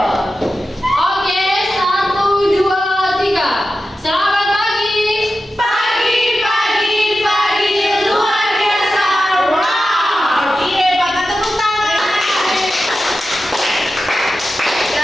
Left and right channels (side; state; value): both; normal; correlation 0.92